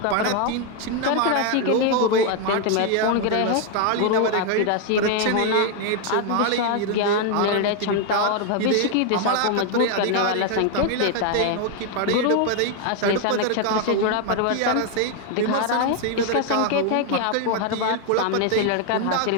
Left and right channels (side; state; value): both; different; correlation 0.01